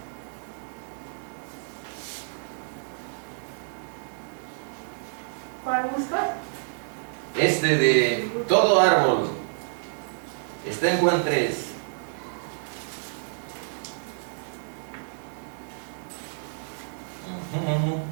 ¿Cuál busca? Este de todo árbol está en Juan 3.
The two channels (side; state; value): left; silent; 59 dB below the other